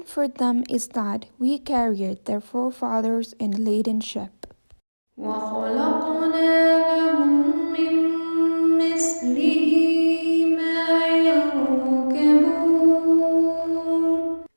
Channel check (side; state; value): both; inverted; correlation -1.00